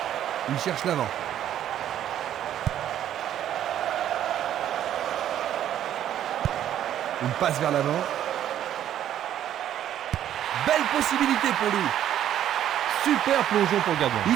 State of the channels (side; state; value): left; quieter; 11.0 dB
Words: Il cherche l'avant. Une passe vers l'avant. Belle possibilité pour lui. Super plongeon pour le gardien.